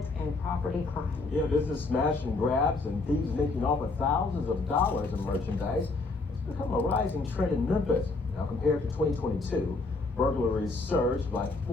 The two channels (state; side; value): quieter; right; 3.5 dB